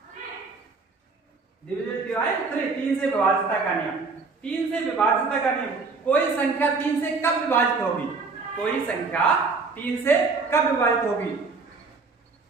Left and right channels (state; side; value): quieter; left; 4.3 dB